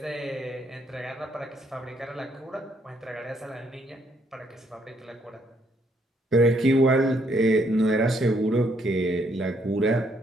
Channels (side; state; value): both; normal; correlation 0.71